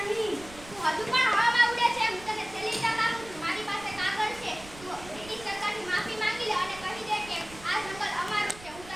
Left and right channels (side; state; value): right; noise; rumble, 18 dB below the sound